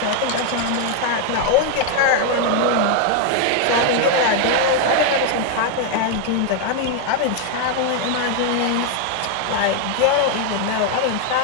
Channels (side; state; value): both; different; correlation 0.01